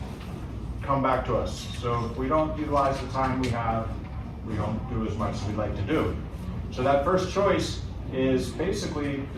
come back to us. So if we don't utilize the time we have, we don't do as much as we'd like to do. So that first choice is basically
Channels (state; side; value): identical; both; correlation 1.00